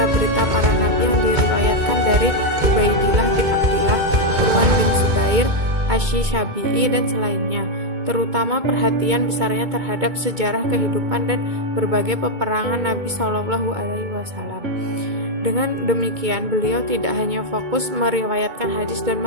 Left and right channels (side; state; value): left; late; 2.2 ms